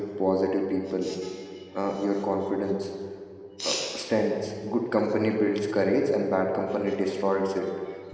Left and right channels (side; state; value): both; identical; correlation 1.00